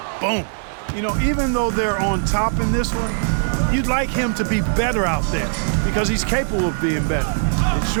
Boom. You know, even though they're on top in this one, you'd like him to be better out there because he's capable of being better. It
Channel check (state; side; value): silent; left; digital silence